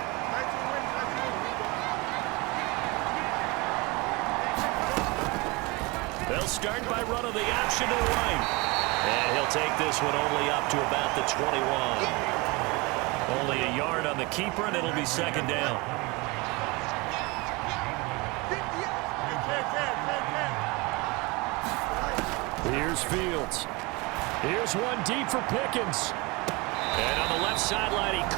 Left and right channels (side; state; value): left; quieter; 25.8 dB